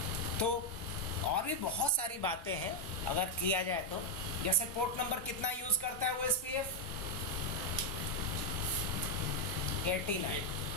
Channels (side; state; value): both; normal; correlation 0.01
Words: तो और भी बहुत सारी बातें हैं अगर किया जाए तो, जैसे पोर्ट नंबर कितना यूज करता है OSPF? 89।